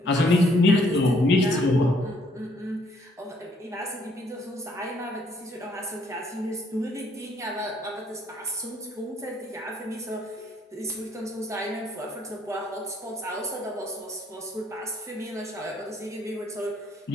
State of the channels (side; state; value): both; normal; correlation 0.66